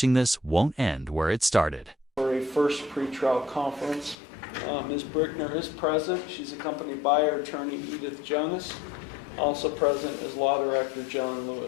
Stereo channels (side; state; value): right; drops out; at 4.2 s